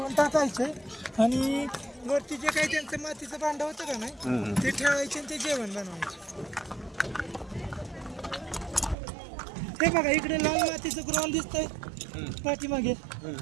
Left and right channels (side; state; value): left; drops out; at 9.0 s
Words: टाकायचे आणि वरती जे काही त्यांचं मातीचं भांडं होतं का नाही ते ठेवायचे आणि ते जेवण बनवायचे. हे बघा इकडे लाल मातीचं ग्राउंड दिसतंय पाठीमागे.